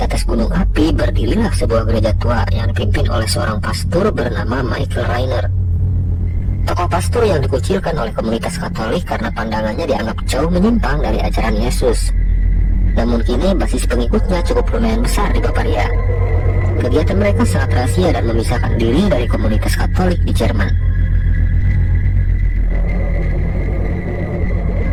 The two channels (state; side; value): identical; both; correlation 1.00